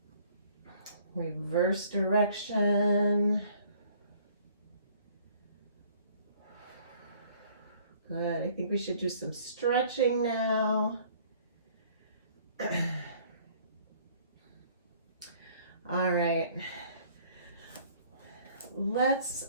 Reverse direction. Good. I think we should do some stretching now. All right. Let's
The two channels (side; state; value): both; inverted; correlation -0.57